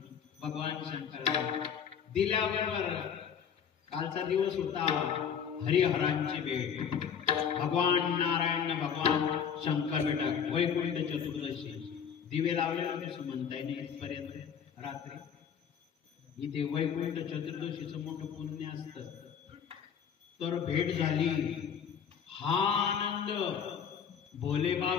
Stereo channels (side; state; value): right; quieter; 7.6 dB